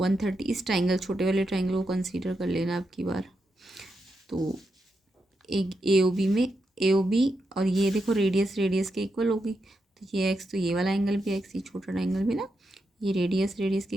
इस ट्रायंगल छोटे वाले ट्रायंगल को कंसीडर कर लेना आपकी बार। तो एक AOB में AOB और ये देखो रेडियस के इक्वल होगी, तो ये x, तो ये वाला एंगल भी x, ये छोटा ट्रायंगल भी ना, ये रेडियस के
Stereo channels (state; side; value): normal; both; correlation 0.85